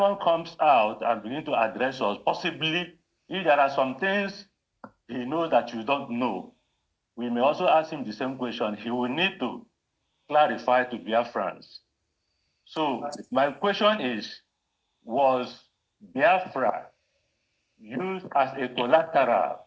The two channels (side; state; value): both; identical; correlation 1.00